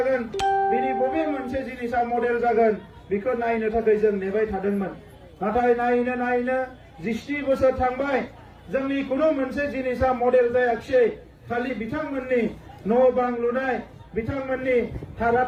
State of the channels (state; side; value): identical; both; correlation 1.00